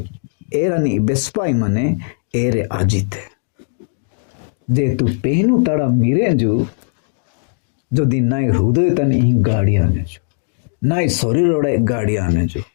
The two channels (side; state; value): right; silent; digital silence